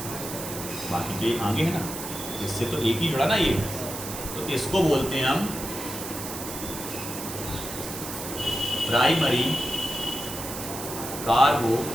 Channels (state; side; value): noise; right; hiss, 8 dB below the sound